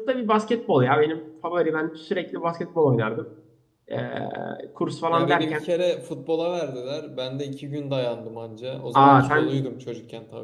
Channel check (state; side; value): identical; both; correlation 1.00